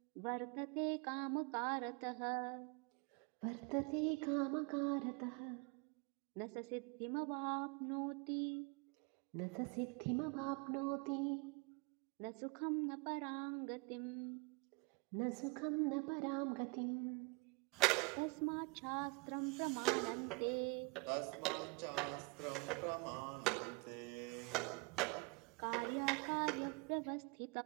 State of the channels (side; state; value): left; quieter; 29.1 dB